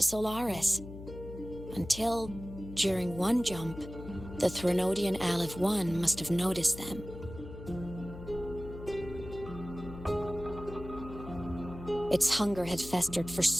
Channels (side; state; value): left; noise; hum, 12 dB below the sound